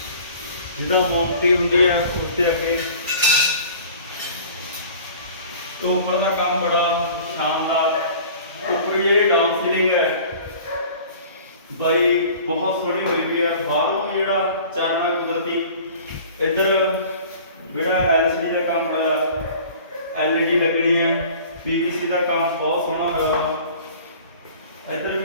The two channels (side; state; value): both; inverted; correlation -0.45